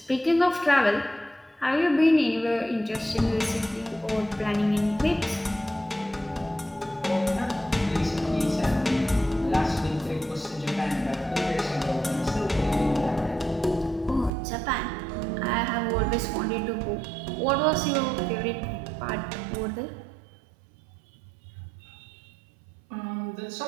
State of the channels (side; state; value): left; drops out; at 14.3 s